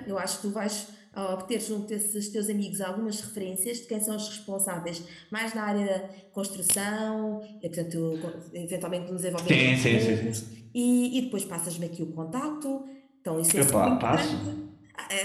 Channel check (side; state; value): both; identical; correlation 1.00